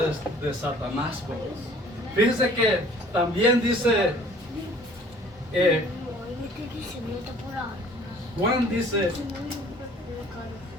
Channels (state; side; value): normal; both; correlation 0.52